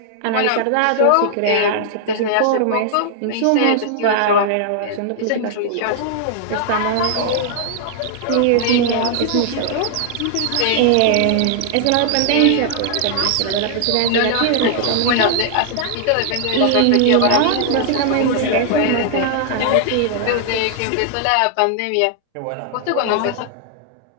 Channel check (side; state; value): both; different; correlation -0.01